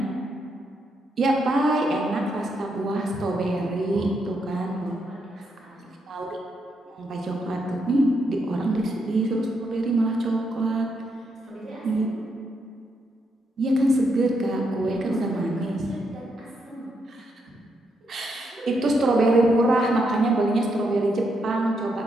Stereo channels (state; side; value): normal; both; correlation 0.79